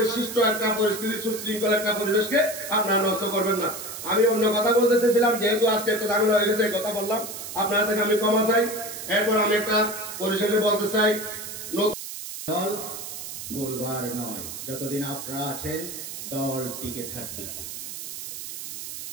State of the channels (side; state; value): right; noise; hiss, 9 dB below the sound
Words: সৃষ্ট একটা পরিস্থিতি, সুশৃঙ্খল একটা পরিবেশকে আপনারা নষ্ট করবেন না। আমি অন্য কথা বলতে চেয়েছিলাম, যেহেতু আজকে একটা ঝামেলা হয়ে গেছে, কথা বললাম, আপনারা থেকে আমি ক্ষমা চাই। এরপর আমি একটা পরিশেষে বলতে চাই, দল ভুলবার নয়, যতদিন আপনারা আছেন দল টিকে থাকবে।